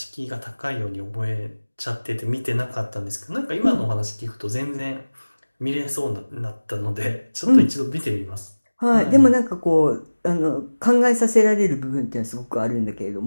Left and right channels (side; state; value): both; inverted; correlation -1.00